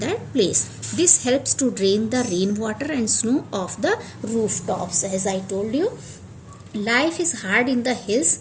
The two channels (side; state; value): both; identical; correlation 1.00